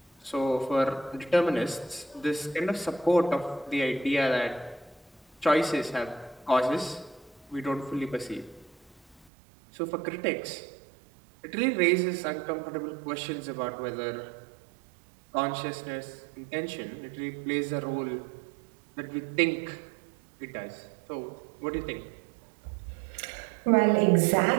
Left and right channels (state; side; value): drops out; left; at 9.2 s